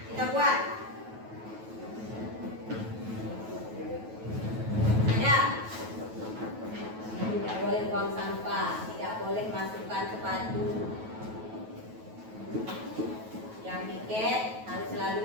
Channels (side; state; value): left; late; 9.2 ms